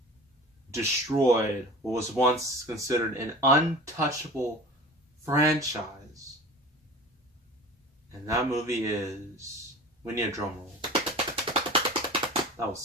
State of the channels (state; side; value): normal; both; correlation 0.39